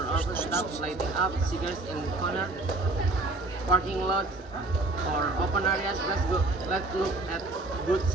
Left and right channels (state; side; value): quieter; left; 3.0 dB